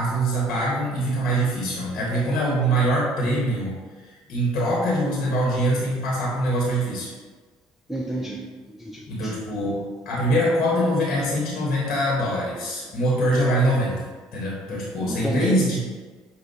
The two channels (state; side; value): normal; both; correlation 0.57